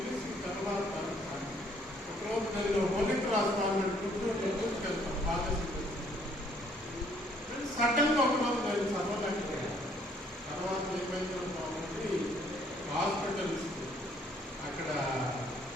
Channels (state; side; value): normal; both; correlation 0.64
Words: తర్వాత ఒకరోజు నేను హోలీకి రాస్తాను గుంటూరుకెళ్తాను. సడన్గా ఒకరోజు నేను చదవలేకపోయాను. తర్వాత ఏమైందో కాబట్టి హాస్పిటల్స్ అక్కడ